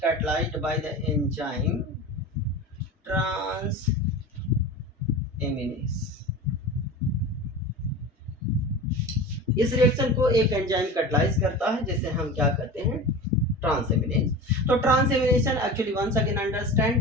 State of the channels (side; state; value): both; normal; correlation 0.32